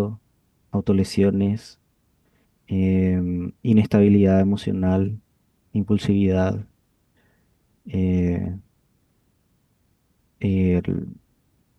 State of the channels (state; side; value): identical; both; correlation 1.00